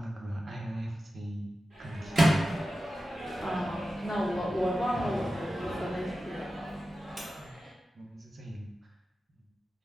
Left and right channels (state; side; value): normal; both; correlation 0.93